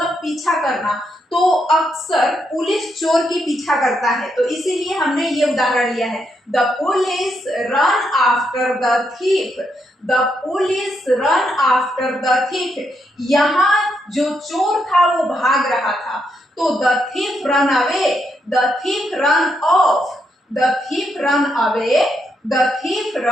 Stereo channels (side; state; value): both; normal; correlation 0.79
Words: पीछा करना। तो अक्सर पुलिस चोर की पीछा करता है, तो इसीलिए हमने ये उदाहरण लिया है। The police run after the thief, the police run after the thief. यहाँ जो चोर था वो भाग रहा था। तो the thief run away, the thief run off, the thief run away, the thief